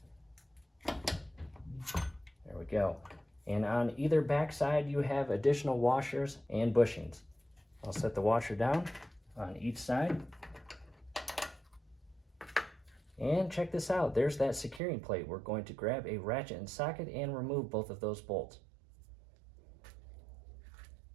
There we go. And on either back side, you have additional washers and bushings. I'll set the washer down on each side. And check this out. There's that securing plate. We're going to grab a ratchet and socket and remove both of those bolts.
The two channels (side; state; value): left; drops out; at 14.8 s